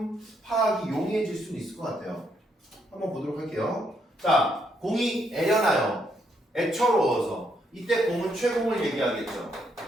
파악이 용이해질 수는 있을 것 같아요. 한번 보도록 할게요. 자, 공이 애려나요. 애처로워서. 이때 공은 최공을 얘기하겠죠.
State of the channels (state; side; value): normal; both; correlation 0.75